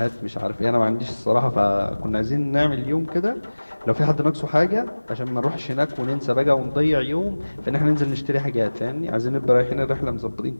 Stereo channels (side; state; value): both; inverted; correlation -1.00